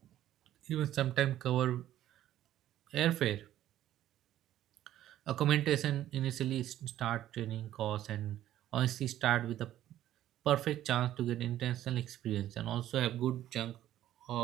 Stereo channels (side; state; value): left; quieter; 12.7 dB